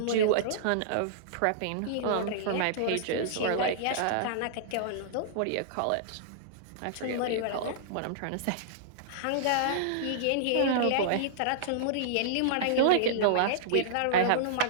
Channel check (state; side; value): different; both; correlation -0.02